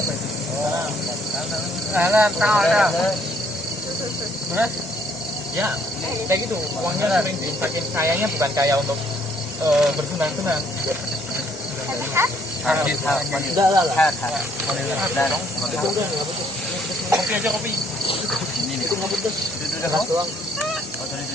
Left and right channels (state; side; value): normal; both; correlation 0.65